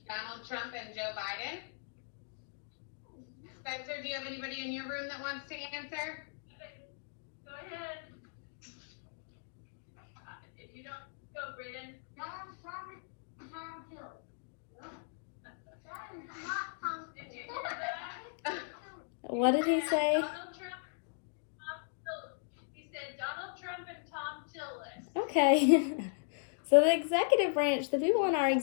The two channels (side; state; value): right; silent; digital silence